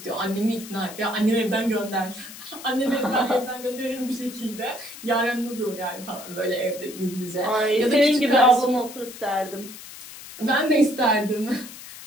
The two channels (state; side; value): noise; left; hiss, 15 dB below the sound